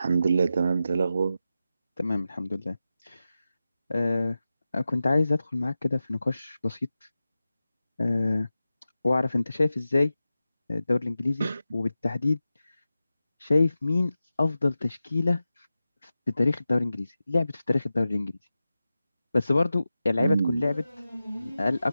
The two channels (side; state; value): both; inverted; correlation -0.93